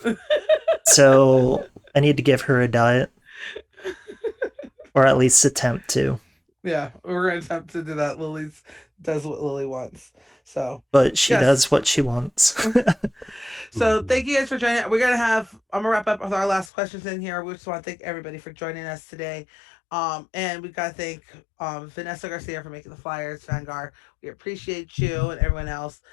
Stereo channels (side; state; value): right; drops out; at 16.7 s